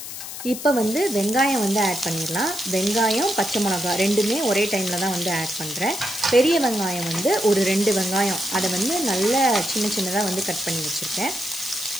இப்போ வெங்காயம் ஆட் பண்ணிடலாம். வெங்காயம், பச்சை மிளகாய் ரெண்டுமே ஒரே டைமில் தான் ஆட் பண்ணுறேன். பெரிய வெங்காயம் ஒரு 2 வெங்காயம் அதை நல்லா சின்ன சின்னதாக கட் பண்ணி வச்சுருக்கேன்.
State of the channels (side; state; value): left; noise; hiss, 9 dB below the sound